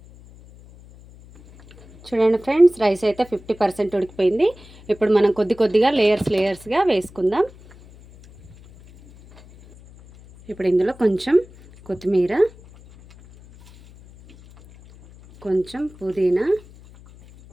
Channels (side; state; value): left; noise; hum, 23 dB below the sound